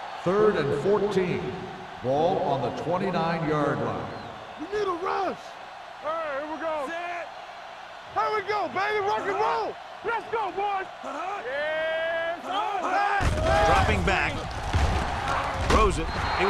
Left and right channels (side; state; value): both; identical; correlation 1.00